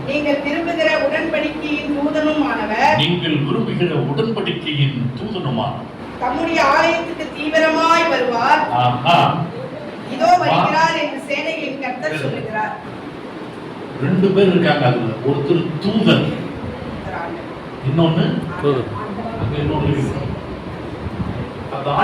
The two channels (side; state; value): both; identical; correlation 1.00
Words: நீங்கள் விரும்புகிற உடன்படிக்கையின் தூதனுமானவர், நீங்கள் விரும்புகிற உடன்படிக்கையின் தூதனுமானவர் தம்முடைய ஆலயத்துக்கு தீவிரமாய் வருவார். இதோ வருகிறார் என்று சேனைகளின் கர்த்தர் சொல்லுகிறார். 2 பேர் இருக்காங்க. அதுல ஒருத்தர் தூதன், இன்னொன்னு அங்க இன்னொன்னு இருக்கு. அந்த